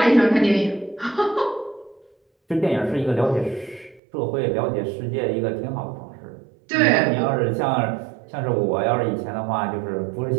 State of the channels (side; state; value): left; drops out; at 4.0 s